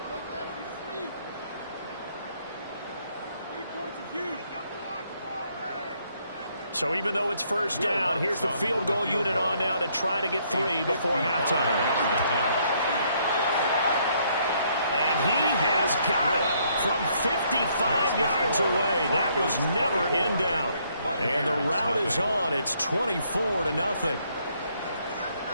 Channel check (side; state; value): both; inverted; correlation -0.69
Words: So even though it's first down, here's the field goal unit on now to try to get 3 before halftime. And he has got it from 55 yards away. That was never in doubt. And the route is on. It's 24-0.